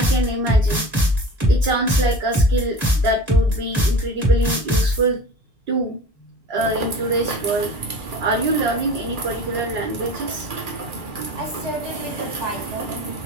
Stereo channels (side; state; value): both; normal; correlation 0.38